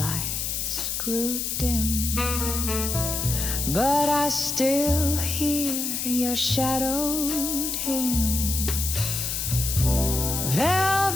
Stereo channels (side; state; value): left; noise; hiss, 2 dB below the sound